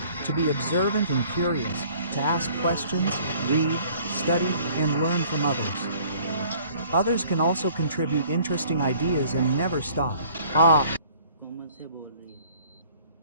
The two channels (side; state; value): both; inverted; correlation -0.55